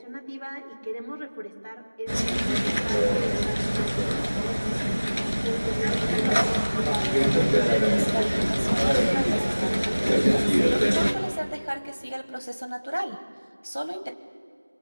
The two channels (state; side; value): inverted; both; correlation -1.00